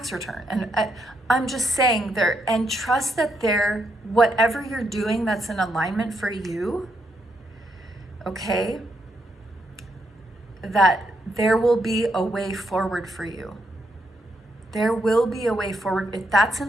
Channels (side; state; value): both; normal; correlation 0.78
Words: return. And I'm just saying there, and trust that whatever you're doing that's in alignment for you, okay, that there will be a way forward for you. There will be a way forward. If that's in